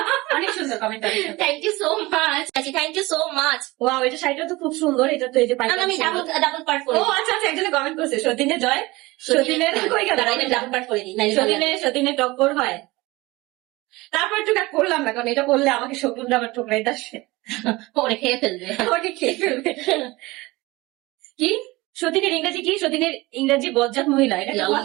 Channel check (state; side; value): quieter; left; 21.3 dB